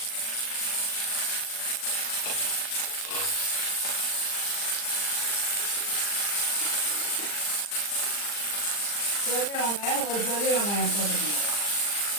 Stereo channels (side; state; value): right; late; 39 ms